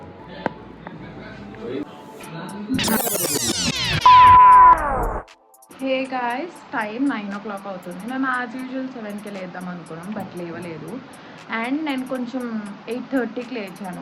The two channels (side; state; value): both; identical; correlation 1.00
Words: హే గాయ్స్, టైం 9 o'clock అవుతుంది. మేము యాజ్ యూజువల్ 7కి లేద్దాం అనుకున్నాం, బట్ లేవలేదు. అండ్ నేను కొంచెం 8:30కి